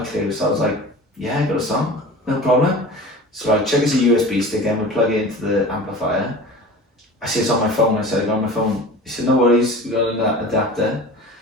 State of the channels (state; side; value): normal; both; correlation 0.37